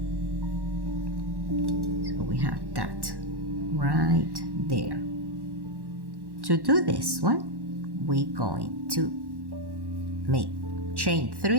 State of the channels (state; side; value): late; left; 1.1 ms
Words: so we have that right there. To do this one, we're going to make chain